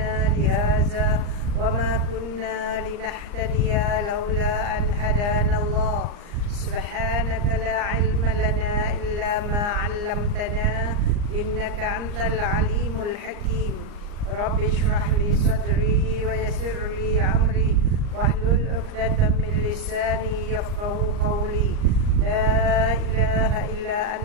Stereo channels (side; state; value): left; late; 39 ms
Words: lihaza wa ma kunna linahtadiya laula an hadana Allah. Subhanaka la ilma lana illa ma 'allamtana innaka antal alimul hakim. Rabbi shrah li sadri wa yassir li amri wahlul 'uqdatam min lisani yafqahu qawli. La ilaha illa